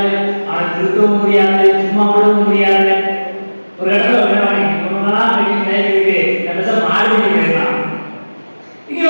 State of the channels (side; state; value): both; inverted; correlation -1.00